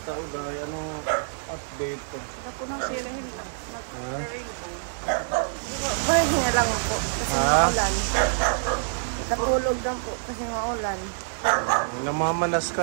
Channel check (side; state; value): left; silent; 61 dB below the other